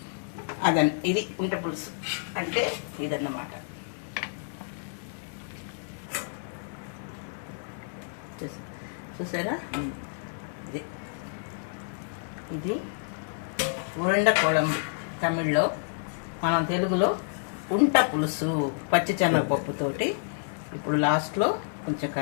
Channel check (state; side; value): silent; right; digital silence